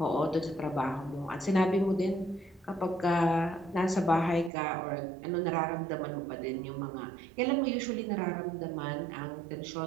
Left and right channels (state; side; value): drops out; left; at 4.5 s